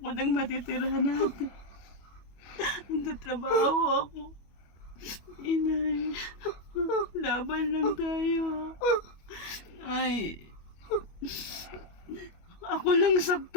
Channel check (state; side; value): late; right; 25 ms